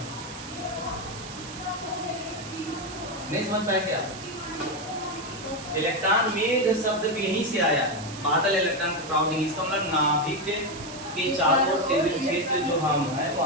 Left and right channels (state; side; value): noise; right; hiss, 13 dB below the sound